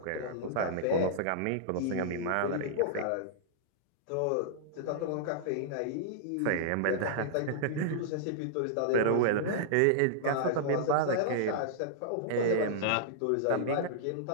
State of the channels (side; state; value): both; different; correlation -0.01